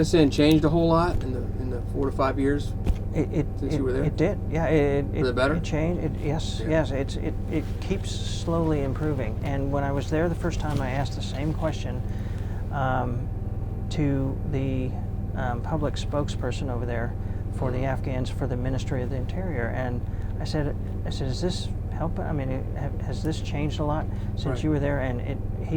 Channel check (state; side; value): identical; both; correlation 1.00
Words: changed a whole lot in the 4 to 5 years since you were there? It did. Yeah, For the better? it changed. Yes, Yeah. yes. It keeps slowly improving. And when I was there the first time, I asked the same question to the public spokesperson over there for the Afghans for the Ministry of the Interior, and I said, is this helping? I mean, has this changed a lot since Right. you were there? And